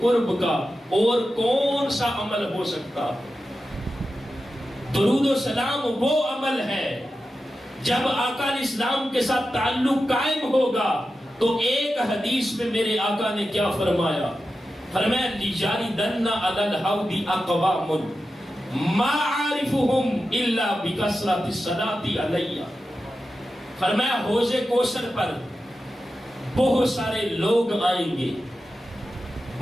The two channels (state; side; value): normal; both; correlation 0.91